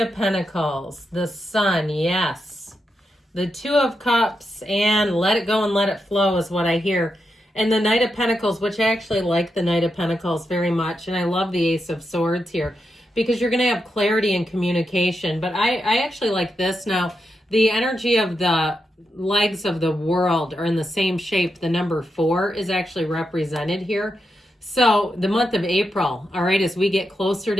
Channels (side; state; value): both; normal; correlation 0.86